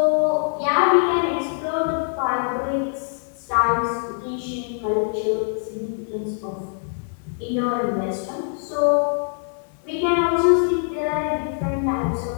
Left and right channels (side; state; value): right; silent; digital silence